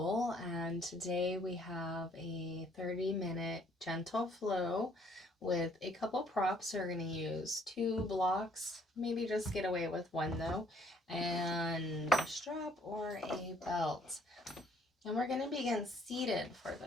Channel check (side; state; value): both; normal; correlation 0.62